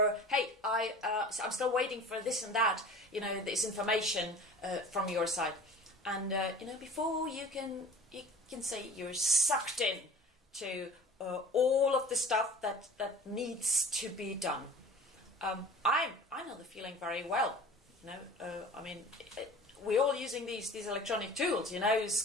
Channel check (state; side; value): normal; both; correlation 0.41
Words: hey, I'm still waiting for this and that. This information from your side. And before you can say you're sucked in to all of the stuff that needs to be done. I know the feeling very well. We're all using these electronic tools,